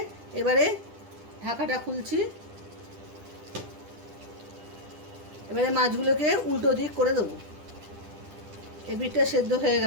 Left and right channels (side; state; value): left; late; 10 ms